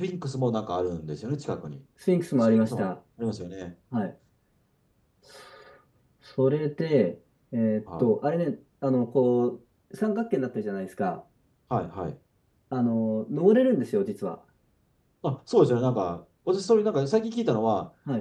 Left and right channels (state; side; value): identical; both; correlation 1.00